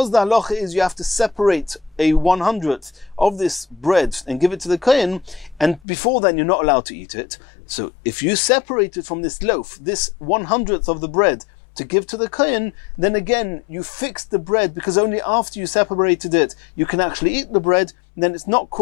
the halacha is you have to separate a 100th of this bread and give it to the kohen, and before then you're not allowed to eat it. So if you separate it from this loaf, this 100th of the bread, to give to the kohen, then again you fixed the bread, because only after you separated it you can actually eat the bread. Then it's not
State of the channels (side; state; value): right; drops out; at 5.8 s